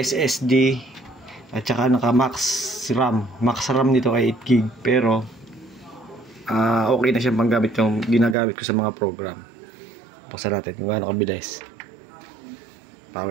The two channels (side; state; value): left; drops out; at 8.3 s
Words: at saka naka max RAM. Max RAM nito ay 8GB pero okay na siyang panggamit yung ginagamit ko sa mga program. Paksa natin kung gaano kabilis.